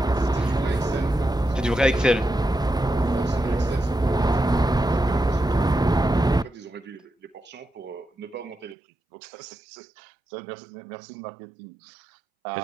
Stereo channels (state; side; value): drops out; left; at 8.8 s